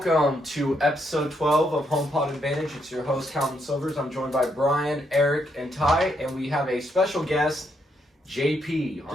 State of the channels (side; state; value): both; normal; correlation 0.76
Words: to episode 12 of HomePod Advantage. It's your host, Calvin Silvers. I'm joined by Brian, Eric, and Ty, and we have a special guest, JP,